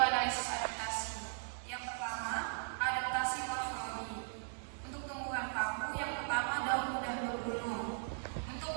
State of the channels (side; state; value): left; silent; digital silence